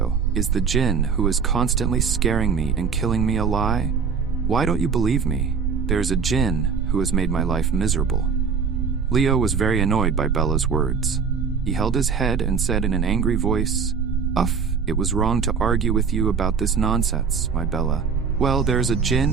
is the Jinn who is constantly scaring me and killing me a lie? Why don't you believe me? There is a Jinn who has made my life miserable." Leo was very annoyed by Bella's words. He held his head and said in an angry voice, It was wrong to argue with you about this nonsense, my Bella. Well, there is a Jinn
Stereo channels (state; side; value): quieter; left; 5.9 dB